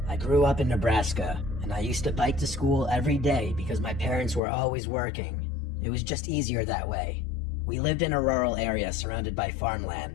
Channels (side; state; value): right; drops out; at 4.4 s